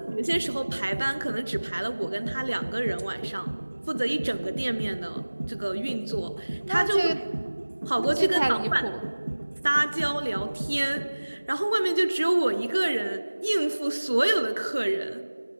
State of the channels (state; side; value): inverted; both; correlation -1.00